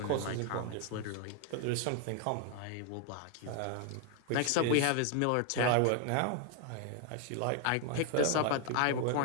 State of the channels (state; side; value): different; both; correlation 0.01